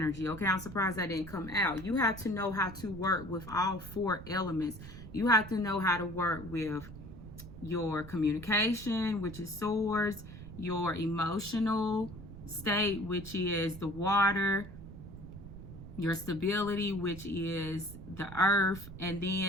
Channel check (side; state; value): right; noise; rumble, 13 dB below the sound